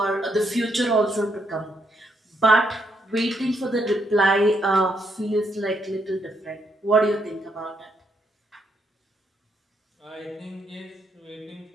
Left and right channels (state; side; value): normal; both; correlation 0.76